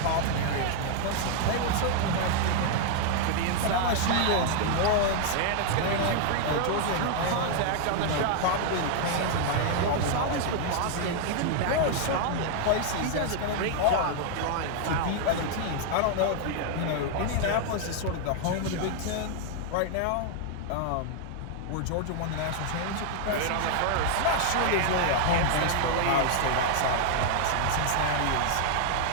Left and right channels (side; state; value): both; different; correlation 0.00